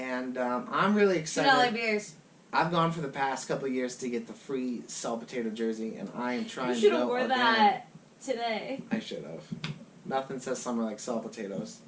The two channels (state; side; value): identical; both; correlation 1.00